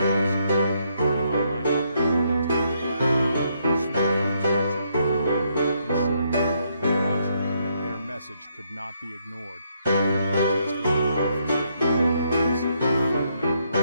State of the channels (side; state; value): both; inverted; correlation -0.74